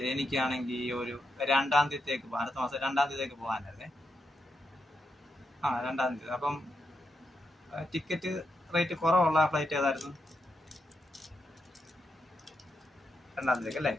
എനിക്കാണെങ്കിൽ ഒരു 2-ാം തീയതിക്ക് പോകാൻ, അടുത്ത മാസം 2-ാം തീയതിക്ക് പോകാനായിരുന്നേ. 2-ാം തീയതി. അപ്പം ടിക്കറ്റ് റേറ്റ് കുറവുള്ള ഫ്ലൈറ്റ് ഏതായിരുന്നു? 2-ാം തീയതിക്ക് അല്ലേ?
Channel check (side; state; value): both; normal; correlation 0.83